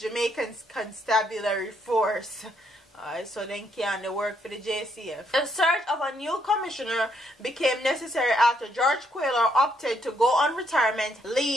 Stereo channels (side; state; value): both; normal; correlation 0.73